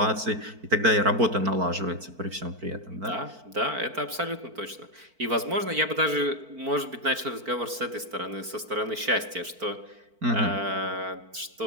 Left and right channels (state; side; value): late; left; 4.5 ms